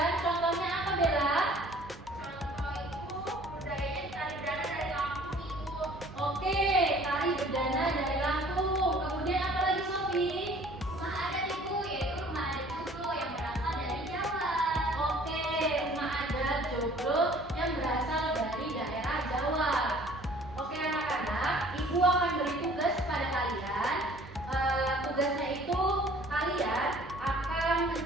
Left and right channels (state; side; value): normal; both; correlation 0.53